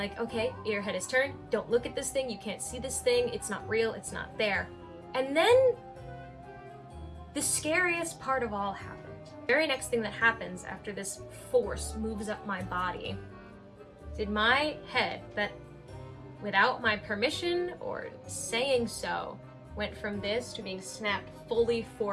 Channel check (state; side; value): identical; both; correlation 1.00